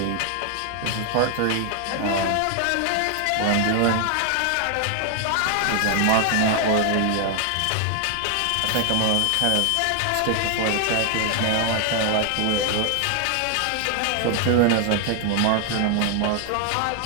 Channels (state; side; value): different; both; correlation 0.00